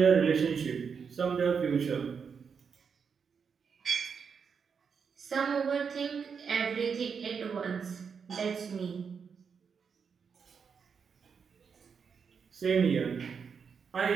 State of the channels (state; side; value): quieter; left; 6.2 dB